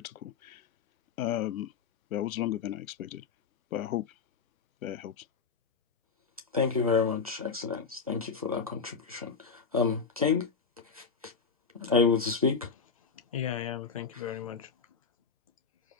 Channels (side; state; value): right; quieter; 5.5 dB